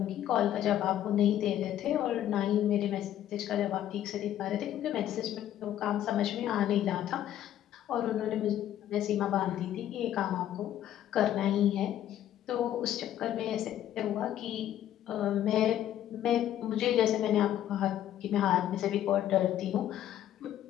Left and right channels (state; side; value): quieter; right; 11.7 dB